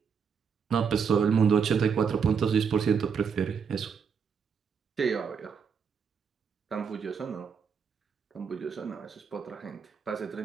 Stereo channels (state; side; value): quieter; left; 6.4 dB